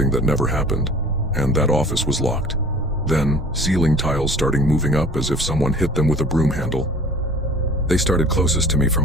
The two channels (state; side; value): normal; both; correlation 0.46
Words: that never happened. And that office was locked. Then, ceiling tiles starting moving up as if someone hit them with a broom handle. They started closest to me from